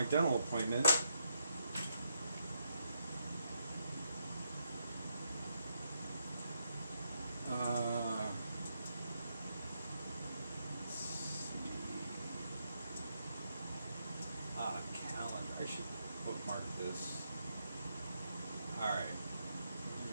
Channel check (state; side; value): inverted; both; correlation -0.80